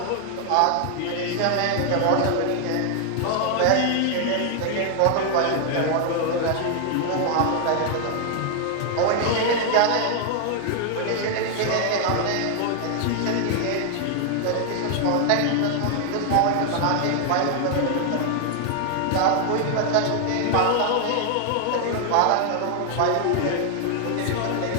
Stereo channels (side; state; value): both; different; correlation 0.00